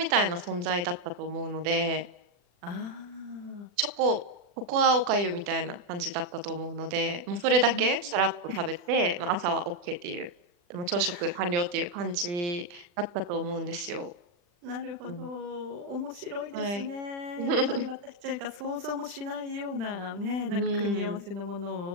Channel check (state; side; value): late; left; 40 ms